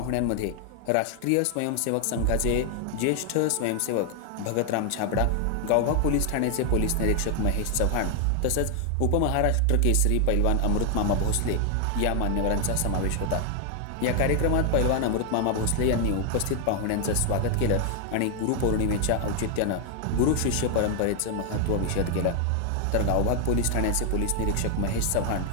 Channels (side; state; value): both; different; correlation 0.00